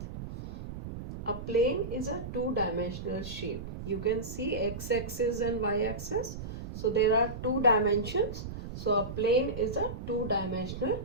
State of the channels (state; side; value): noise; right; rumble, 9 dB below the sound